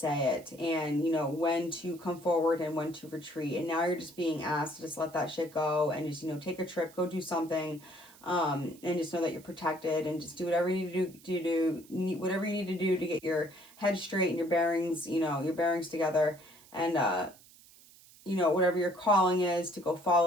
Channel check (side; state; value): right; noise; hiss, 24 dB below the sound